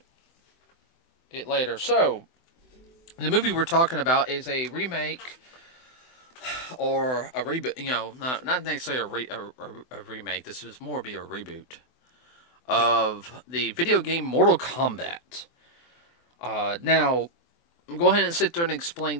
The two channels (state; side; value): late; right; 24 ms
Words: later. So, the movie we're talking about is a remake or a reboot, not necessarily a remake. This is more be a reboot of the video game Mortal Kombat. Now, go ahead and sit there and explain